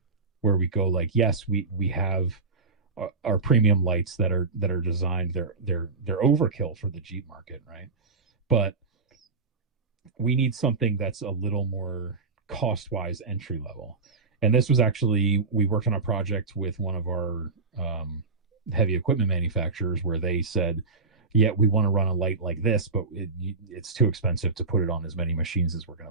where we go like, yes, we have our premium lights that are designed, they're overkill for the Jeep market, right? But we need something that's a little more cost-wise entry level. And this was actually, we worked on a project with one of our heavy equipment manufacturers where they said, yeah, we want to run a light like this, but it's too expensive to put it on as many machines as we're going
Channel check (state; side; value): quieter; left; 4.1 dB